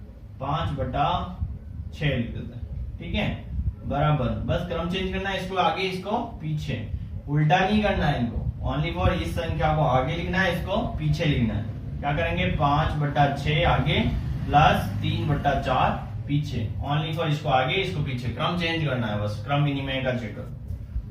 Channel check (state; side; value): identical; both; correlation 1.00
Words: 5 बटा 6 लिख देते हैं, ठीक है, बराबर। बस क्रम चेंज करना है, इसको आगे इसको पीछे, उल्टा नहीं करना है इनको। ओनली फॉर इस संख्या को आगे लिखना है, इसको पीछे लिखना है। क्या करेंगे, 5 बटा 6 आगे प्लस 3 बटा 4 पीछे। ओनली फॉर इसको आगे इसको पीछे, क्रम चेंज करना है, बस क्रम विनिमय का चक्कर।